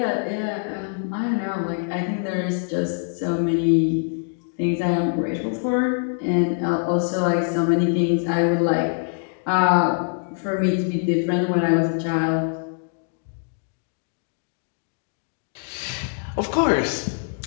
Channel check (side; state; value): right; silent; 63 dB below the other